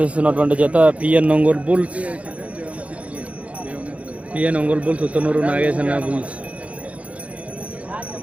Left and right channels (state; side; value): late; left; 0.065 ms